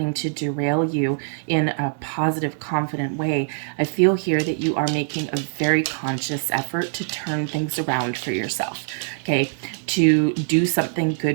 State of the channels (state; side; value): silent; left; digital silence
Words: to derail you in a positive, confident way. I feel here that you are making a very conscious effort to turn things around for yourself, okay? To do something